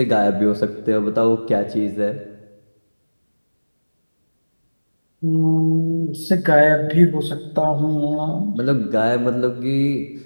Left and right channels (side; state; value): both; inverted; correlation -1.00